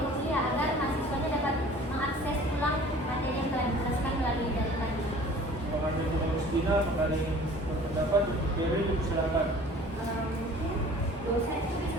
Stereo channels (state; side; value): normal; both; correlation 0.48